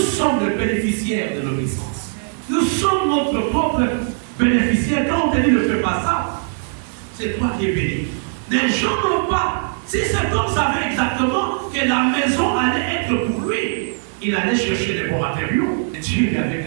les bénéficiaires de l'obéissance. Nous sommes notre propre bénéficiaire. Quand on te dit ne fais pas ça, c'est toi qui es béni. Les gens n'ont pas. Si cet homme savait exactement que la maison allait être pour lui, il allait chercher les bons matériaux. Et Dieu lui avait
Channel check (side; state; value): left; silent; 64 dB below the other